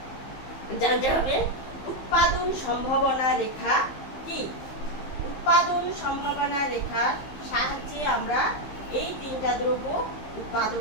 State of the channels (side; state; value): right; late; 15 ms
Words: জানতে হবে উৎপাদন সম্ভাবনা রেখা কি। উৎপাদন সম্ভাবনা রেখার সাহায্যে আমরা এই তিনটা দ্রব্য